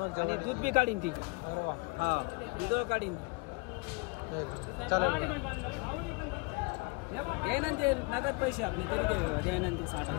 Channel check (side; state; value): right; quieter; 28.5 dB